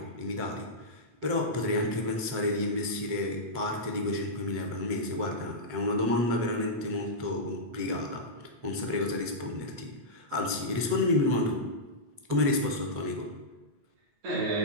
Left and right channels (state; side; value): late; left; 7.8 ms